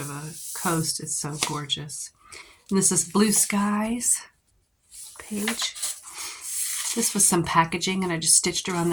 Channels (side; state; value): both; identical; correlation 1.00